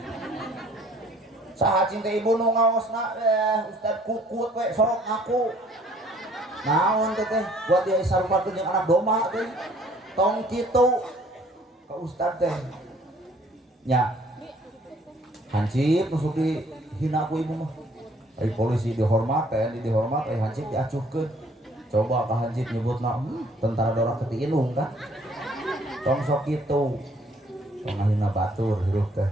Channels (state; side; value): normal; both; correlation 0.59